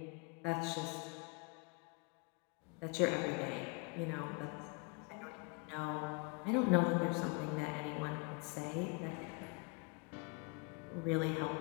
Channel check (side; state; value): right; quieter; 30.9 dB